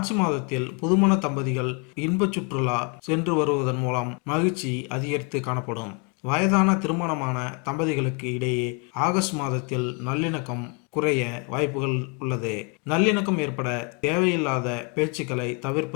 மாதத்தில் புதுமண தம்பதிகள் இன்ப சுற்றுலா சென்று வருவதன் மூலம் மகிழ்ச்சி அதிகரித்து காணப்படும். வயதான திருமணமான தம்பதிகளுக்கு இடையே ஆகஸ்ட் மாதத்தில் நல்லிணக்கம் குறைய வாய்ப்புகள் உள்ளது. நல்லிணக்கம் ஏற்பட தேவையில்லாத பேச்சுக்களை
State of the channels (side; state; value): right; quieter; 33.1 dB